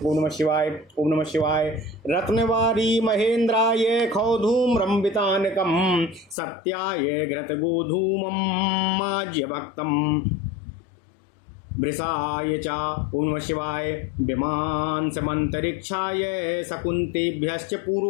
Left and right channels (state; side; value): drops out; right; at 6.4 s